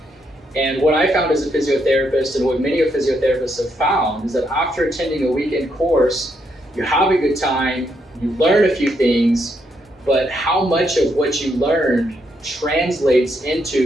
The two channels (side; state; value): both; normal; correlation 0.77